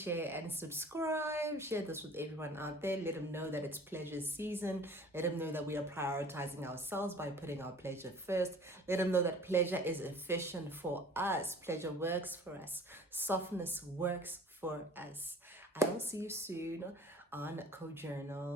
and subscribe. Share this with everyone out there. Let them know that it's pleasure season. Let them know that we are prioritizing ourselves by putting our pleasure first. Let them know that pleasure is efficient for us. Pleasure works for us. Softness works for us. I will see you soon on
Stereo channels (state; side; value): normal; both; correlation 0.47